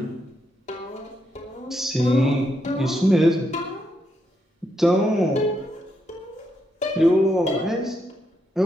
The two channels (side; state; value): both; normal; correlation 0.80